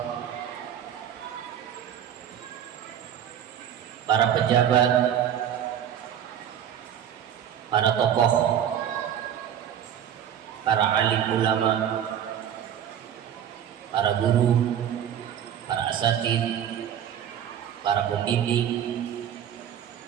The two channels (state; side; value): quieter; left; 9.6 dB